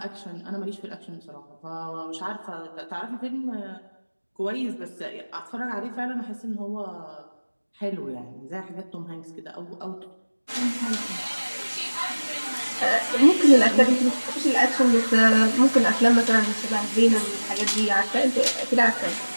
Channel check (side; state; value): both; inverted; correlation -1.00